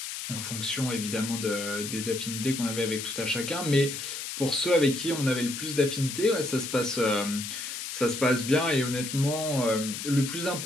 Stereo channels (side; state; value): left; noise; hiss, 6 dB below the sound